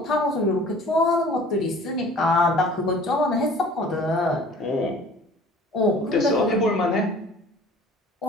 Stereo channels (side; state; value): both; normal; correlation 0.47